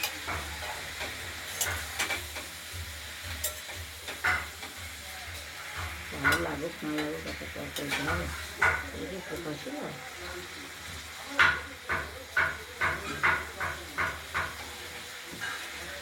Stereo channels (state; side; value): identical; both; correlation 1.00